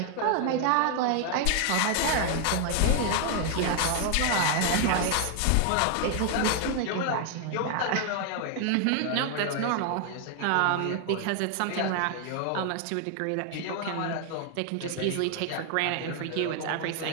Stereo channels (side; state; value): both; different; correlation 0.00